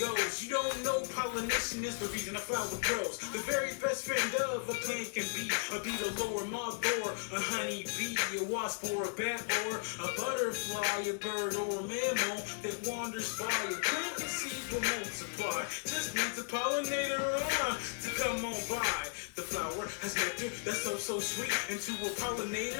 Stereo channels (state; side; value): silent; right; digital silence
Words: You don't know pollination is the reason a flower grows. The very best friend of a plant can be a beetle or a moth or a honey bee, a wasp or a bat or a butterfly, a bird or a mammal that wanders by. A plant and seeds will multiply. Just needs a pollinator to come on by. The flower has nectar that's so sweet, and to a